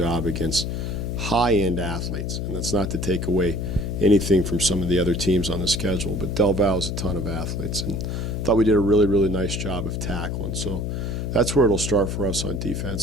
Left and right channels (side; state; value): left; noise; hum, 3 dB below the sound